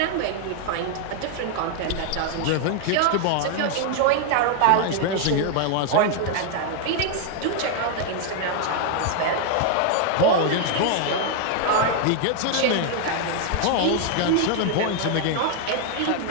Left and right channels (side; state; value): both; different; correlation 0.00